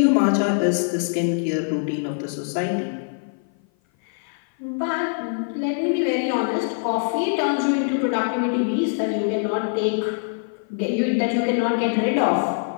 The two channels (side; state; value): right; silent; 56 dB below the other